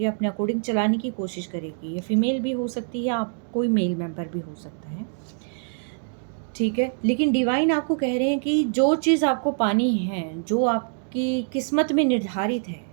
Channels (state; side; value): silent; left; digital silence